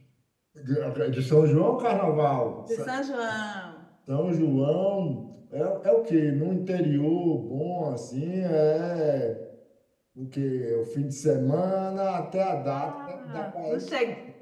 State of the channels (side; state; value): both; identical; correlation 1.00